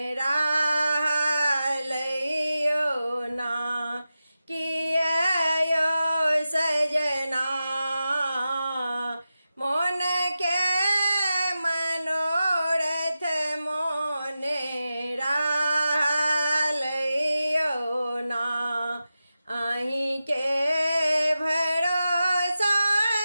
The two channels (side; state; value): both; inverted; correlation -0.93